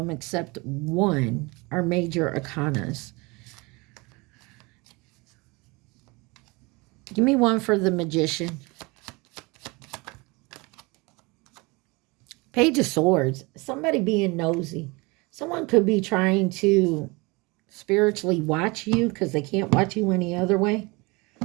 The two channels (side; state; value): left; quieter; 25.9 dB